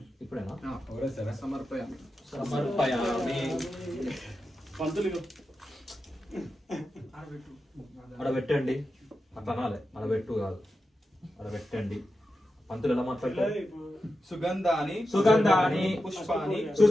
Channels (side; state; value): both; normal; correlation 0.90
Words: ఇప్పుడేనా సమర్పయామి. సమర్పయామి పంతులు అక్కడ పెట్టండి అట్లా అనాలి అక్కడ పెట్టు కాదు అక్కడ పెట్టండి పంతులు ఎలా మాట్లాడతారు సుగంధాని సుగంధాని పుష్పాని